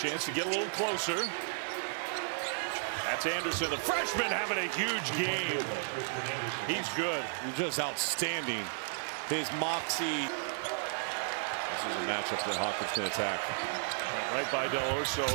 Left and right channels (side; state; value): left; silent; digital silence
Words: to get a little closer. That's Anderson, the freshman, having a huge game. He's good. Just outstanding. His moxie. This is a matchup that Hawkins can attack. Went right by Del Orso,